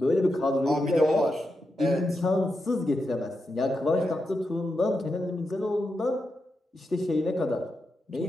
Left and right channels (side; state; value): both; normal; correlation 0.87